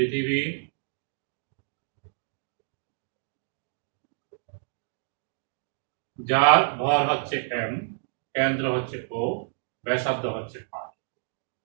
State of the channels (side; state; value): left; silent; digital silence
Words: যার ভর হচ্ছে এম, কেন্দ্র হচ্ছে ও, ব্যাসার্ধ হচ্ছে আর।